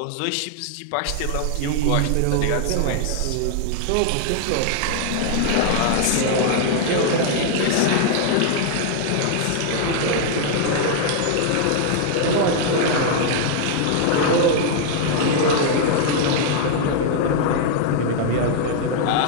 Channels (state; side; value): different; both; correlation 0.00